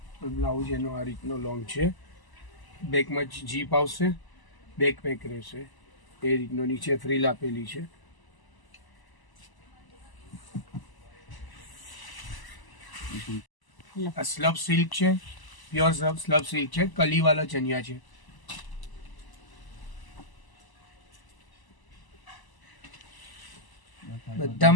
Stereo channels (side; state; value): right; late; 1.0 ms